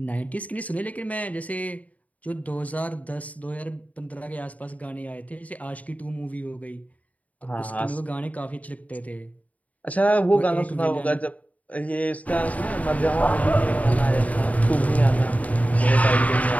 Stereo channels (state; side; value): late; right; 0.070 ms